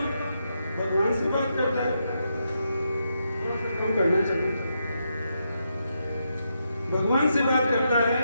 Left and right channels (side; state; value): both; inverted; correlation -0.82